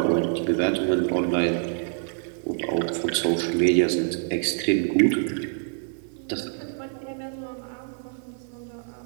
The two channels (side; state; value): left; silent; digital silence